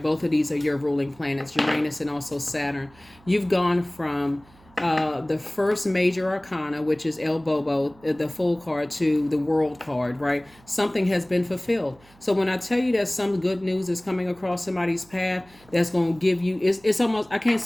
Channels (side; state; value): right; noise; hum, 27 dB below the sound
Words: Both of these are your ruling planets, Uranus and also Saturn. You've gone from the first major arcana, which is El Bobo, the Fool card, to the World card, right? Something has been fulfilled. So when I tell you that some good news is coming across somebody's path, that's going to give you, it's almost, I can't